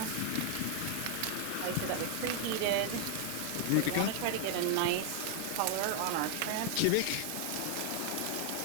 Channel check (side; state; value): both; different; correlation 0.00